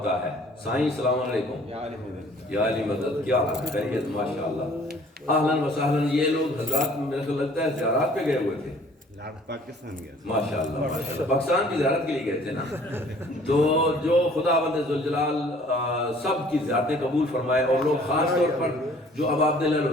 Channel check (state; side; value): normal; both; correlation 0.54